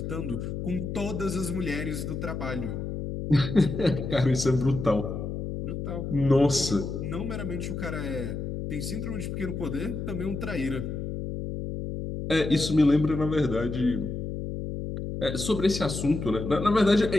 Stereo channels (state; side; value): noise; left; hum, 5 dB below the sound